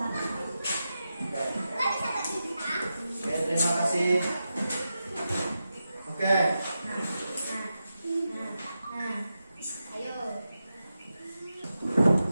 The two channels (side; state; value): both; inverted; correlation -0.90